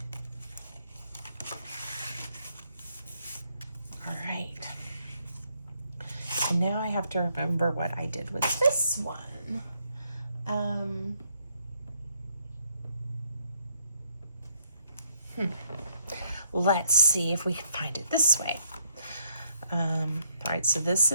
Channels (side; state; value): both; inverted; correlation -0.71